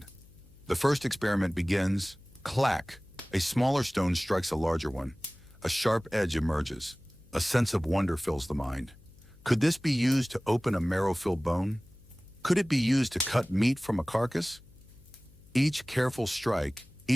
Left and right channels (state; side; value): noise; left; hum, 25 dB below the sound